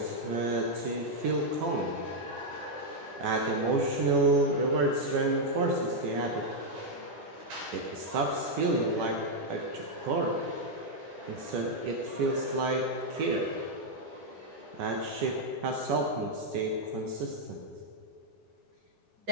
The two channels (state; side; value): late; left; 10 ms